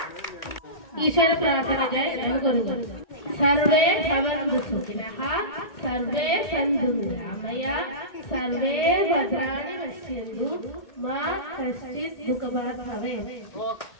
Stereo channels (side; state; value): right; late; 1.8 ms